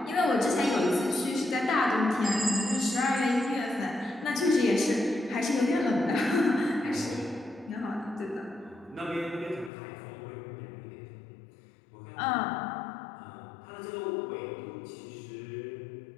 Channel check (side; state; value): right; drops out; at 9.7 s